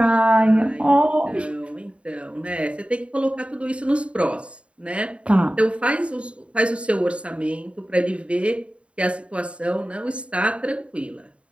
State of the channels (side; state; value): left; late; 0.060 ms